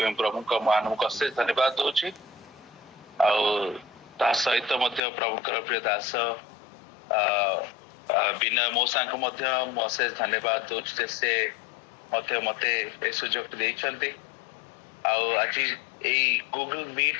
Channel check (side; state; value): right; drops out; at 5.0 s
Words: प्रभु को मान को अशेष धन्यवाद दोछि ता सहित मध्य प्रभु कर प्रिय दास बिना मोसा को मध्य अशेष धन्यवाद दोछि से मते मते ए सुजोग देइछन्ते आज ए गूगल